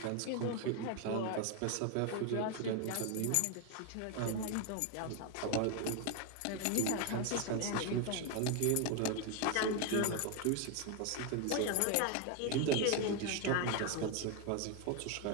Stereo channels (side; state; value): both; different; correlation 0.01